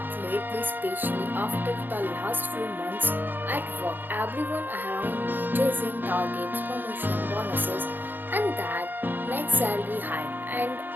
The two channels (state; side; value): late; left; 0.091 ms